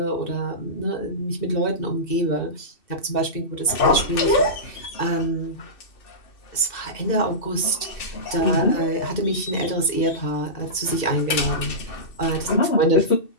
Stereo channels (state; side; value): late; right; 2.7 ms